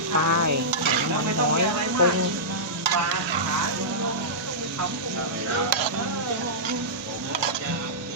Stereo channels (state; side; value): normal; both; correlation -0.15